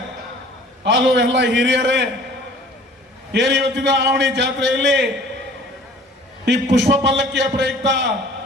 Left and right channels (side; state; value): both; normal; correlation 0.50